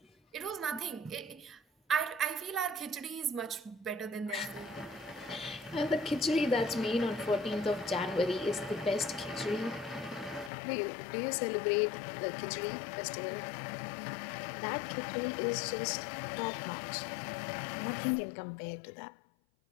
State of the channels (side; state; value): right; drops out; at 10.5 s